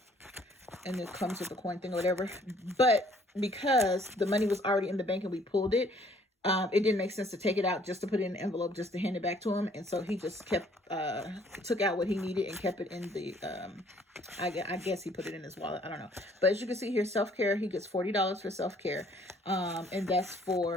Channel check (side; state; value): both; normal; correlation 0.61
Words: it comes with the coin thing or whatever. But because the money was already in the bank and we pulled it, it didn't make sense to take it out just to put it in an envelope just to hand it back to him. And so he just kept, took out what he needed and kept it in the, I guess he put it in his wallet. I don't know. But as you can see here, self-care, he gets $40 for self-care. And that's